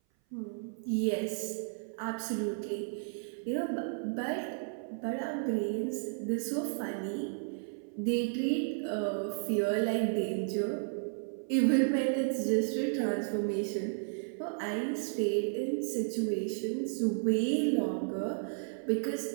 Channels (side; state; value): left; silent; 56 dB below the other